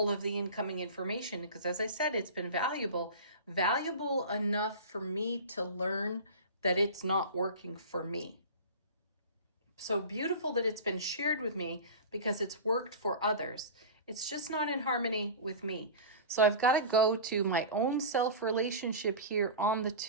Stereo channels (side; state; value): both; inverted; correlation -0.31